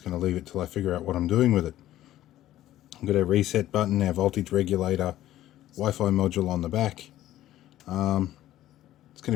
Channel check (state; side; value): quieter; right; 13.7 dB